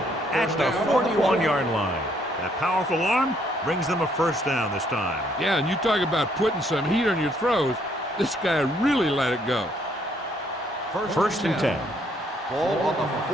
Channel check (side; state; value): both; normal; correlation 0.68